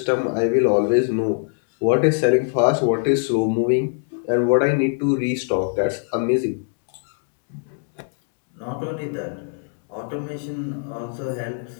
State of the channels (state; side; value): silent; right; digital silence